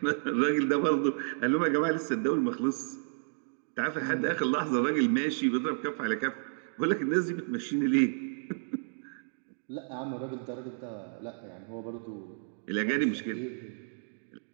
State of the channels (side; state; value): left; silent; digital silence